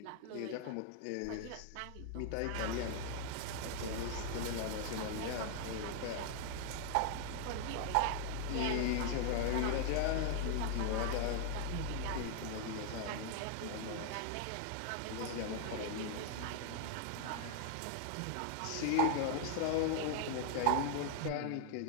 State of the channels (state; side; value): different; both; correlation 0.00